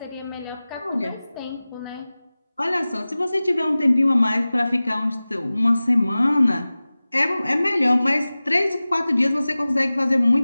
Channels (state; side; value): inverted; both; correlation -0.97